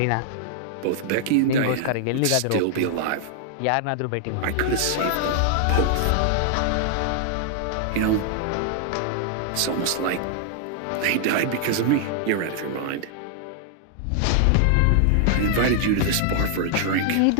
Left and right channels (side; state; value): both; different; correlation -0.01